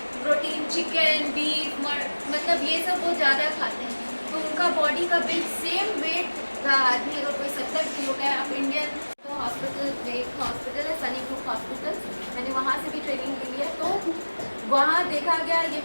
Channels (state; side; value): inverted; both; correlation -1.00